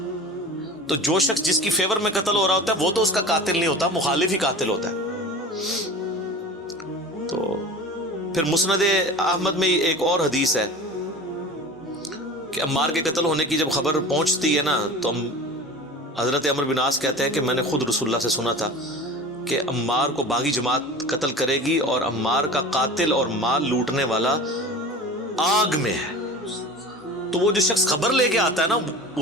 تو جو شخص جس کی فیور میں قتل ہو رہا ہوتا ہے وہ تو اس کا قاتل نہیں ہوتا، مخالف ہی قاتل ہوتا ہے. تو پھر مسند احمد میں ایک اور حدیث ہے کہ عمار کے قتل ہونے کی جب خبر پہنچتی ہے نا، تو حضرت عمر بن عاص کہتے ہیں کہ میں نے خود رسول اللہ سے سنا تھا کہ عمار کو باغی جماعت قتل کرے گی، اور عمار کا قاتل اور مال لوٹنے والا آگ میں ہے. تو وہ جو شخص خبر لے کے آتا ہے نا،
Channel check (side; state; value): both; normal; correlation 0.36